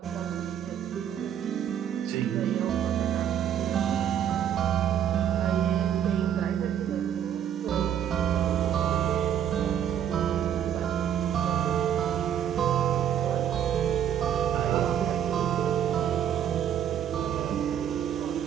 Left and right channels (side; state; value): left; quieter; 9.6 dB